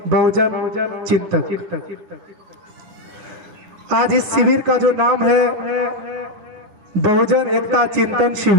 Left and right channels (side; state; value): left; late; 10 ms